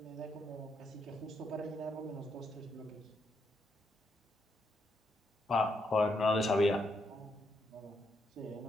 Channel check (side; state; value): both; normal; correlation 0.78